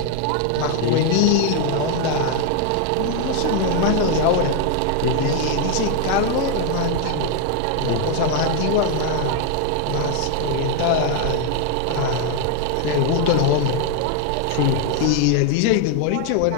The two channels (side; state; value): both; different; correlation 0.01